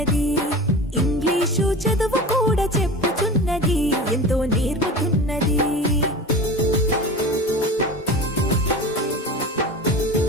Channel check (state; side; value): normal; both; correlation 0.33